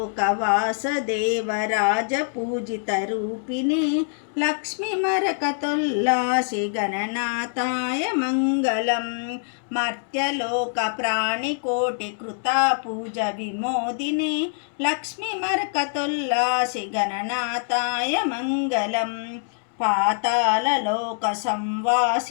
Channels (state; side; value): silent; right; 62 dB below the other